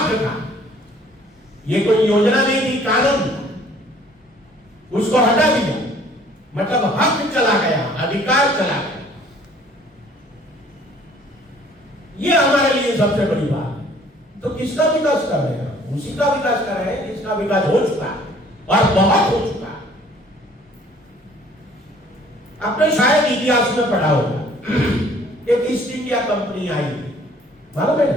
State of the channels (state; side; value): normal; both; correlation 0.56